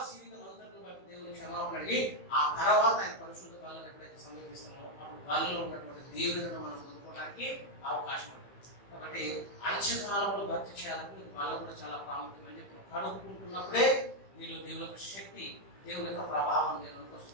జీవితం అంతటిని బట్టి దేవుని క్షమాపణ అడిగి ఆ తర్వాత ఆయన పరిశుద్ధ వాళ్ళని ఎప్పుడైతే సమీపిస్తామో అప్పుడు వాళ్ళలో ఉన్నటువంటి దేవులను మనం పొందుకోవడానికి అవకాశం ఉంటుంది. కాబట్టి అంత్యకాలంలో భక్తి చేయాలంటే వాళ్ళ కూడా చాలా ప్రాముఖ్యం అని చెప్పి కడుక్కుంటున్నప్పుడే నీలో దేవుని యొక్క శక్తి, దేవుని యొక్క ప్రభావం దేవునికి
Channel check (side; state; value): right; late; 15 ms